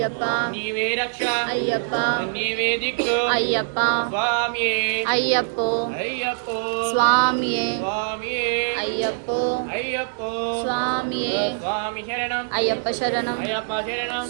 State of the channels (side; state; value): left; silent; digital silence